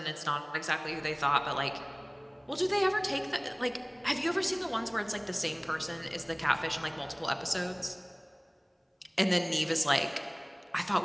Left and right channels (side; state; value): both; identical; correlation 1.00